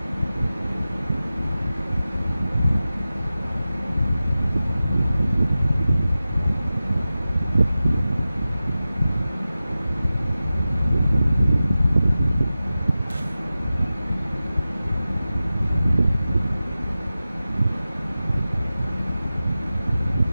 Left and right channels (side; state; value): both; inverted; correlation -0.95